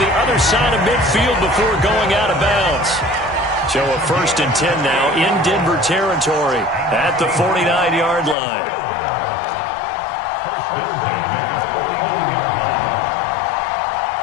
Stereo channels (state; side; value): drops out; right; at 8.3 s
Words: other side of midfield before going out of bounds. So a 1st and 10 now in Denver territory at the 49-yard line.